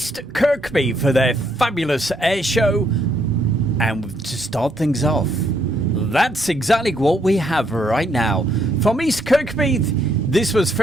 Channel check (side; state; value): both; normal; correlation 0.71